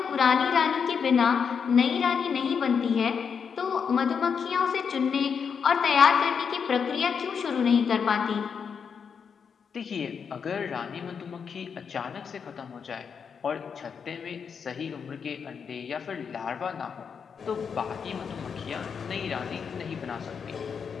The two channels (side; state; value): right; quieter; 6.5 dB